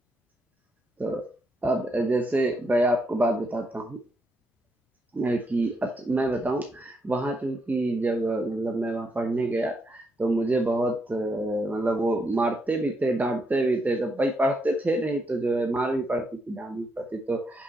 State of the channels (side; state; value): both; normal; correlation 0.79